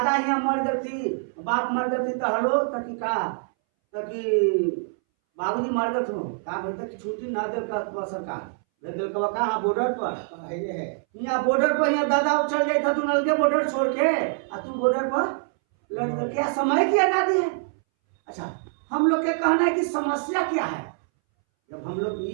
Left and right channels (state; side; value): silent; left; 61 dB below the other